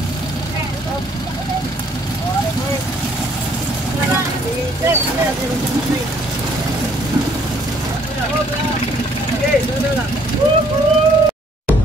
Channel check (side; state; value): both; normal; correlation 0.63